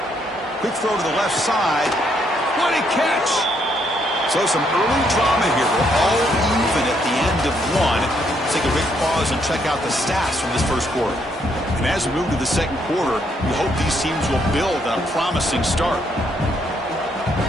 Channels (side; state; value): both; normal; correlation 0.73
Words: Quick throw to the left side. What a catch! So some early drama here. We're all even at the end of 1. Let's take a quick pause and check out the stats from this 1st quarter. And as we move to the 2nd quarter, we hope these teams will build on a promising start.